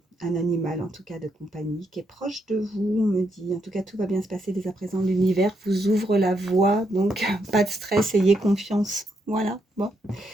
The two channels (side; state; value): both; normal; correlation 0.78